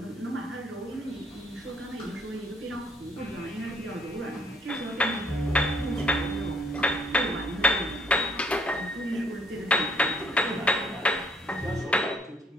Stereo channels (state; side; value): normal; both; correlation 0.64